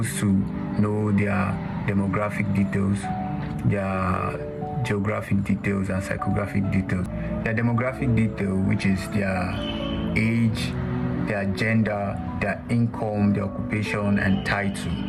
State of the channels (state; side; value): identical; both; correlation 1.00